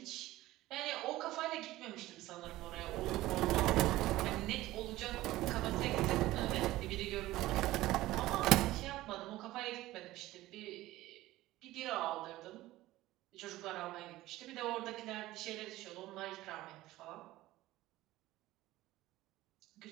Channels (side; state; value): left; quieter; 16.8 dB